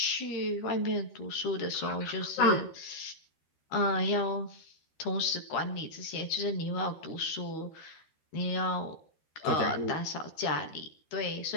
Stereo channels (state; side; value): late; right; 13 ms